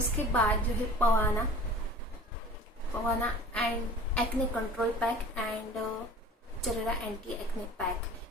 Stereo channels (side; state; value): both; normal; correlation 0.43